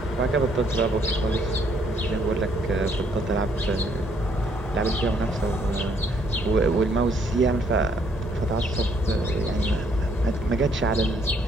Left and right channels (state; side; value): normal; both; correlation 0.68